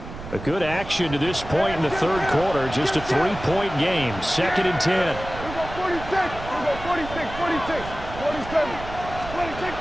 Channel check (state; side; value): noise; right; rumble, 11 dB below the sound